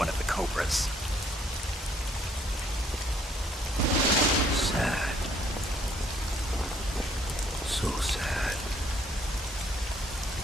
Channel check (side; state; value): both; normal; correlation 0.65